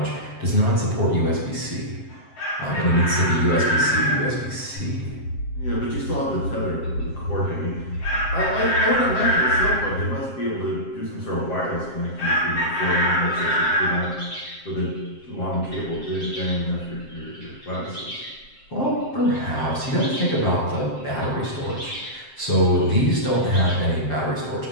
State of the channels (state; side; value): late; right; 7.6 ms